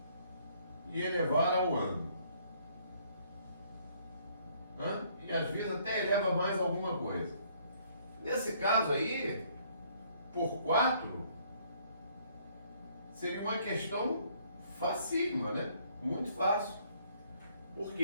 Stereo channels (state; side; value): inverted; both; correlation -0.64